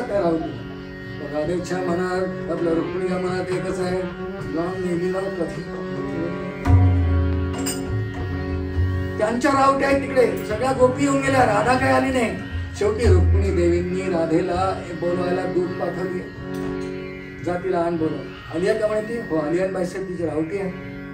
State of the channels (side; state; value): both; identical; correlation 1.00